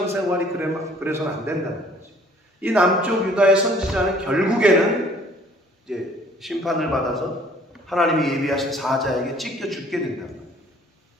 그래서는 안 된다는 거지. 이 남쪽 유다의 선지자는 결국에는 이제 심판을 받아서 하나님이 예비하신 사자에게 찢겨 죽게 된단 말이에요.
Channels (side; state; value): both; normal; correlation 0.57